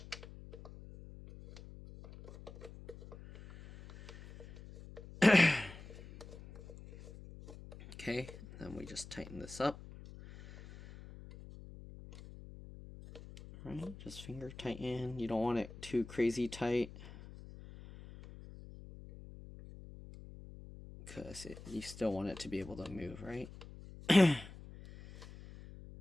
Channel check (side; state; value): left; noise; hum, 16 dB below the sound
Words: Okay, then we just tighten this up. Right, just finger tighten. You don't want it too crazy tight, because you still want it to be able to move, right?